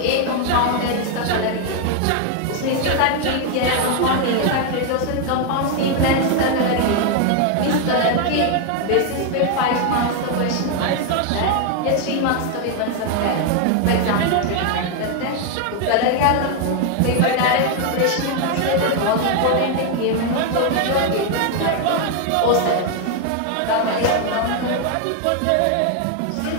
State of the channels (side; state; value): both; different; correlation 0.00